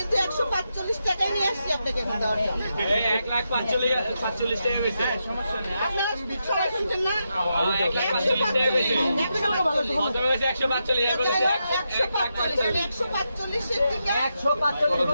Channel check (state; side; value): inverted; both; correlation -0.85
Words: 145 টাকায় নিয়ে আসছি আপনাকে এখন দেওয়ার জন্য। 1,45,000 টাকা বেশি সমস্যা নেই। আপনারা সবাই শুনছেন না?